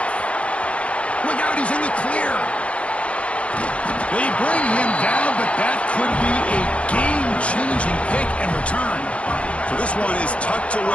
Look out, he's in the clear. They bring him down, but that could be a game-changing pick and return. So this one is tucked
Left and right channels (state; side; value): late; right; 0.062 ms